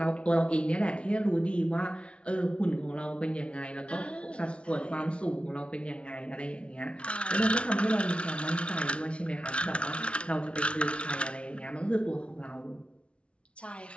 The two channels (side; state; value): right; late; 0.060 ms